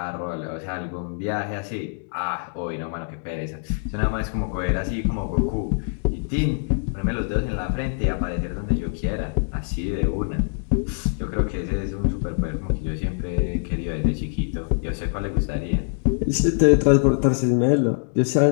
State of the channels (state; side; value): silent; right; digital silence